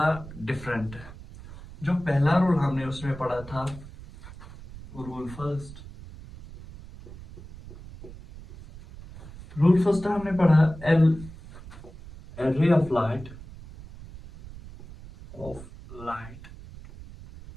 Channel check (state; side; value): noise; right; rumble, 16 dB below the sound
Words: डिफरेंट है। जो पहला रूल हमने उसमें पढ़ा था, रूल फर्स्ट हमने पढ़ा L ray of light